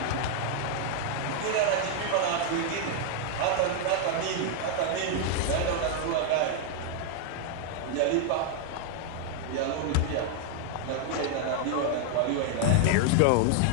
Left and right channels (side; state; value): both; different; correlation 0.00